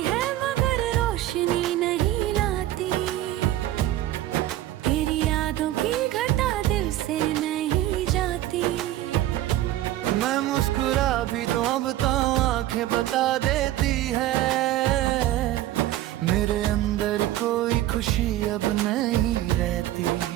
है मगर रोशनी नहीं लाती, तेरी यादों की घटा दिल से नहीं जाती। मैं मुस्कुरा भी दूं अब तो आंखें बता देती है, मेरे अंदर कोई खुशी अब नहीं रहती।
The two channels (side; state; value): left; quieter; 14.2 dB